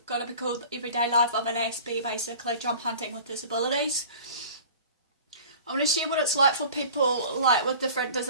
going to be called Everyday Life of an Aspie, basically job hunting with disabilities. I want to share what it's like for people like with different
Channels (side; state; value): both; inverted; correlation -0.43